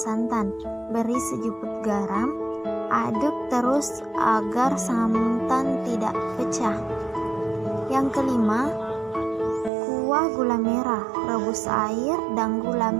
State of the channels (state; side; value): drops out; left; at 9.7 s